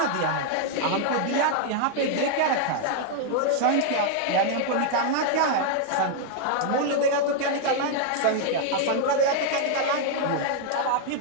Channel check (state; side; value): different; both; correlation 0.00